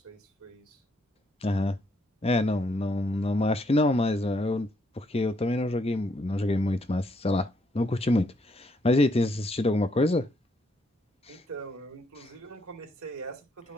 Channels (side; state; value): both; normal; correlation 0.73